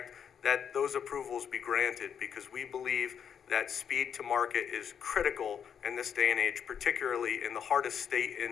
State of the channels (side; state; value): right; quieter; 7.8 dB